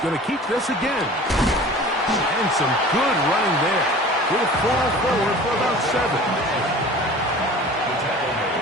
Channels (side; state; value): both; normal; correlation 0.42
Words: going to keep this again. And some good running there. He'll fall forward for about 7. The tackle